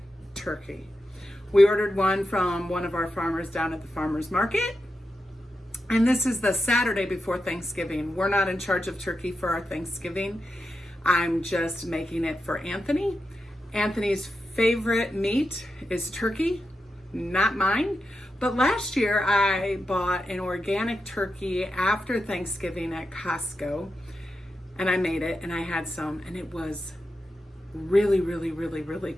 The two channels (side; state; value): both; normal; correlation 0.88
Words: turkey. We ordered one from one of our farmers down at the farmer's market, and this is the Saturday before Thanksgiving. We're not in charge of turkey for our Thanksgiving. I'm just making it for Anthony. Anthony's favorite meat is turkey, not mine. But last year I bought an organic turkey after Thanksgiving at Costco, and I made it and I had some, and it was really